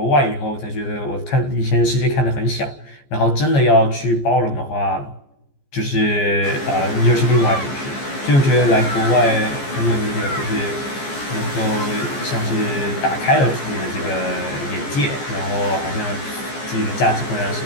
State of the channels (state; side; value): late; right; 14 ms